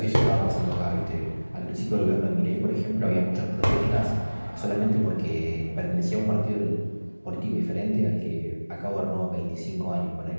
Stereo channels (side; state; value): both; inverted; correlation -1.00